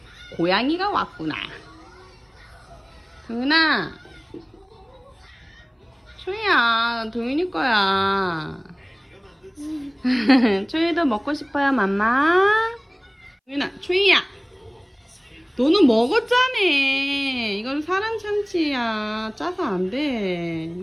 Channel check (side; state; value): both; identical; correlation 1.00